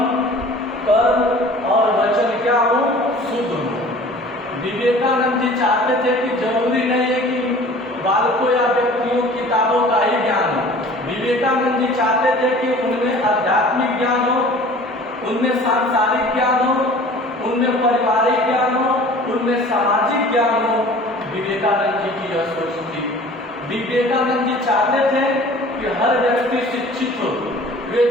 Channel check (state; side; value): normal; both; correlation 0.46